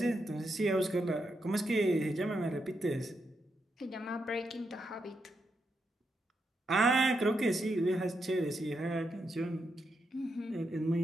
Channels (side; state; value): both; normal; correlation 0.83